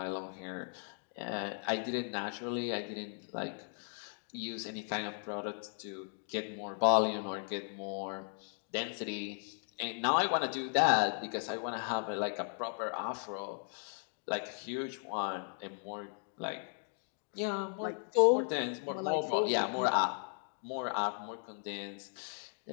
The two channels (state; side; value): silent; right; 53 dB below the other